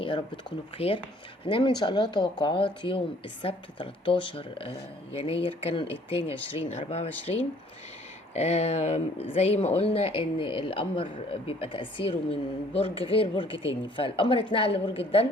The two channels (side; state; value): both; normal; correlation 0.58